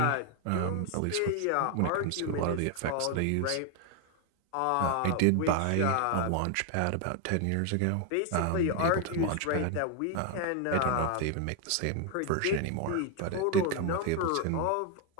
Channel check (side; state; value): both; different; correlation 0.00